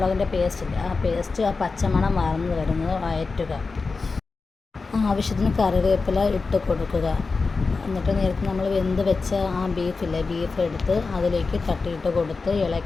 പേസ്റ്റില്ല, ആ പേസ്റ്റ് ആ പച്ചമണം വാർന്ന് വരുന്നത് വഴറ്റുക. ആവശ്യത്തിന് കറിവേപ്പില ഇട്ട് കൊടുക്കുക. എന്നിട്ട് നേരത്തെ നമ്മൾ വെന്ത് വെച്ച ആ ബീഫ് എടുത്ത് അതിലേക്ക് തട്ടിയിട്ട് കൊടുത്ത്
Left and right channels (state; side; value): quieter; right; 4.2 dB